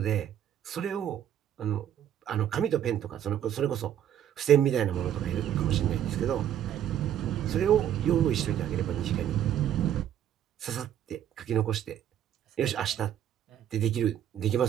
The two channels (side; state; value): left; quieter; 10.5 dB